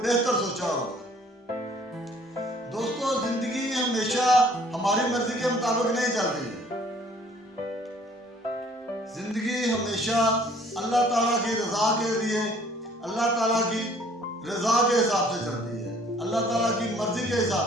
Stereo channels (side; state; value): both; normal; correlation 0.57